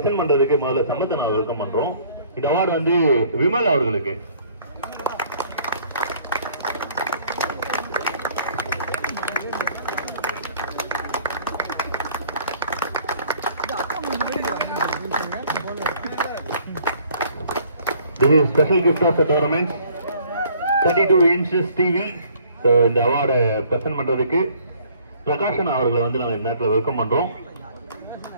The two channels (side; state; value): both; inverted; correlation -0.58